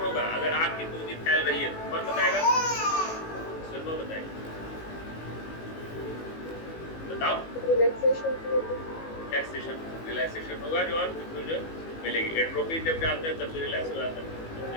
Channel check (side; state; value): right; late; 18 ms